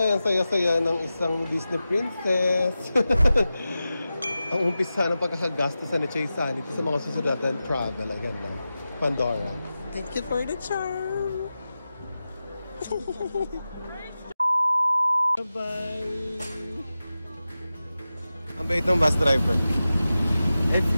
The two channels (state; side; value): inverted; both; correlation -0.94